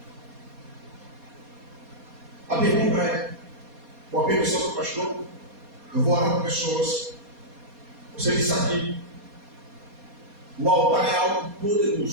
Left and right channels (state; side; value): late; left; 4.2 ms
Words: A pergunta é, com a permissão do pastor, eu vou orar com pessoas. Você disse aqui, o altar é algo